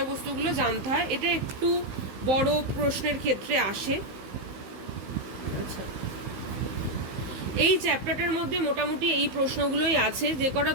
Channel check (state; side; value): late; left; 16 ms